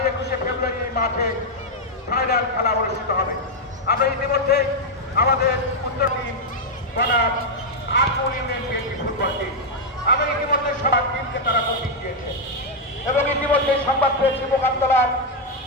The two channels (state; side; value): normal; both; correlation -0.01